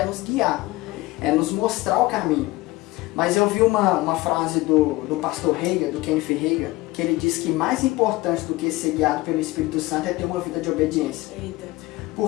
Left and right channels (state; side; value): quieter; right; 19.9 dB